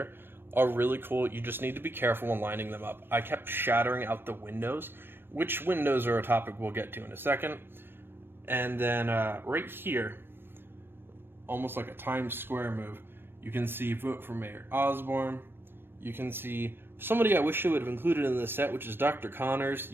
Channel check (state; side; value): late; left; 0.10 ms